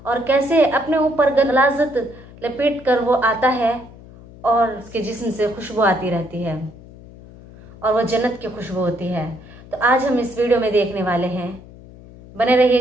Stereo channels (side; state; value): left; noise; hum, 20 dB below the sound